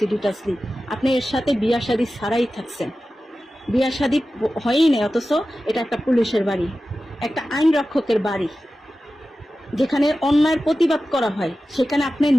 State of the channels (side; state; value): both; normal; correlation 0.94